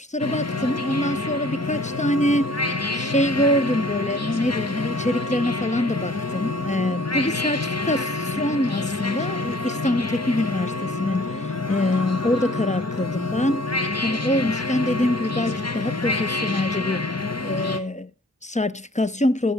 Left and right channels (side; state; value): both; normal; correlation 0.54